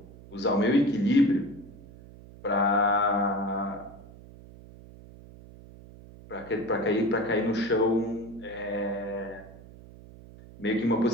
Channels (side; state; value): right; noise; hum, 19 dB below the sound